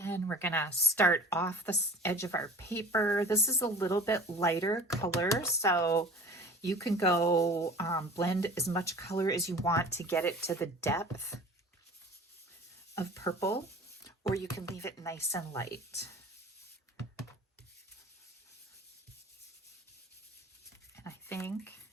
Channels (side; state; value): both; normal; correlation 0.41